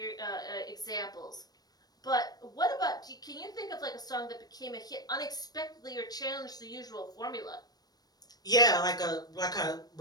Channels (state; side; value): late; right; 0.19 ms